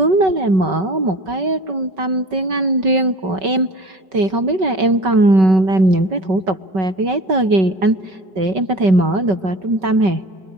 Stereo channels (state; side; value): late; left; 5.3 ms